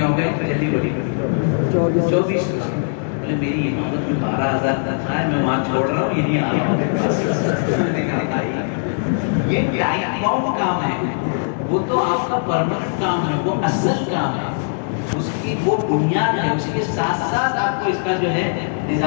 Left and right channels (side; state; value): right; silent; digital silence